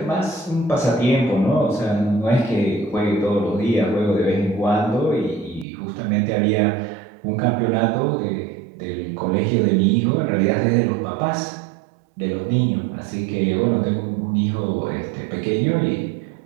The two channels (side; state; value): left; drops out; at 5.7 s